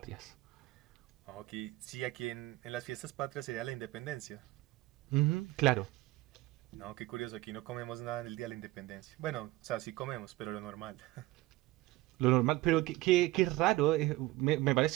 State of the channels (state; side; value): quieter; left; 18.2 dB